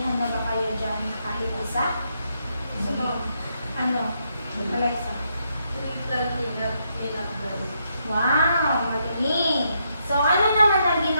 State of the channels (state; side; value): inverted; both; correlation -0.78